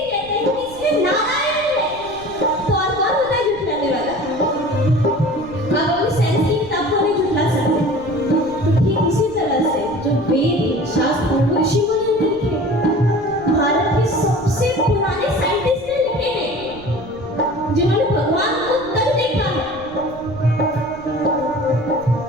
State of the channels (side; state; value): right; noise; rumble, 19 dB below the sound